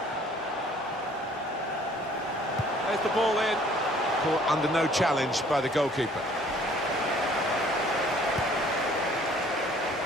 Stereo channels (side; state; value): both; normal; correlation 0.57